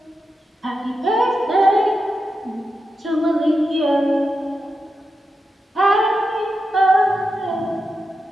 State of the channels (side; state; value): both; normal; correlation 0.88